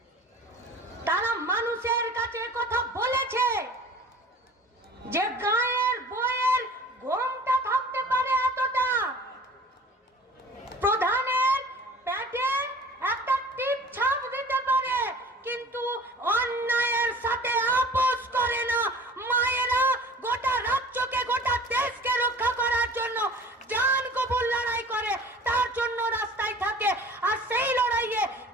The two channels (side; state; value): both; normal; correlation 0.45